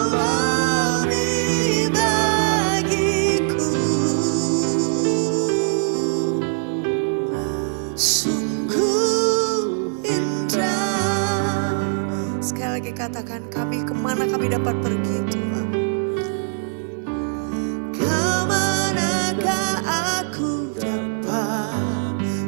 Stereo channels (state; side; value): silent; left; 64 dB below the other